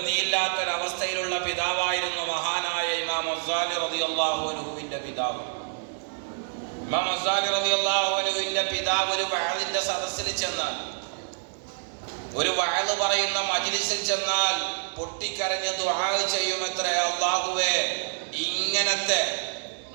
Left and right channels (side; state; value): left; silent; digital silence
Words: പിതാവായിരുന്നു മഹാനായ ഇമാം ഗസാലി റളിയല്ലാഹു അൻഹുവിൻ്റെ പിതാവ്. ഇമാം ഗസാലി റളിയല്ലാഹു അൻഹുവിൻ്റെ പിതാവ് ഒരു വഅദിന്റെ സദസ്സിൽ ചെന്നാൽ, ഒരു വഅദ് പറയുന്ന മജ്ലിസിൽ ചെന്നാൽ പൊട്ടിക്കരഞ്ഞ് ദുആ ചെയ്യുമത്രേ, അല്ലാഹുവേ, ഇങ്ങനത്തെ